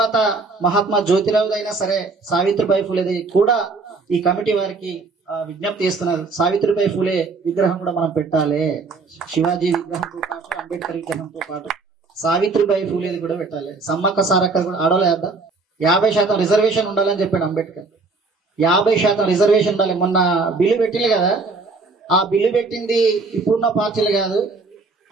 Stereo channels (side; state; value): left; quieter; 3.9 dB